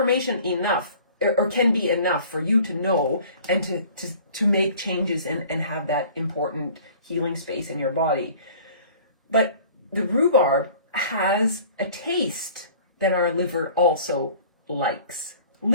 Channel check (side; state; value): both; inverted; correlation -0.48